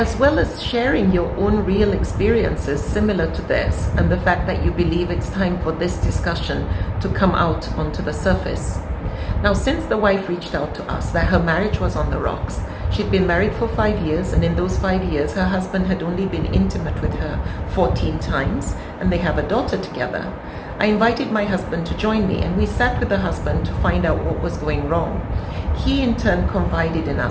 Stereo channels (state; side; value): identical; both; correlation 1.00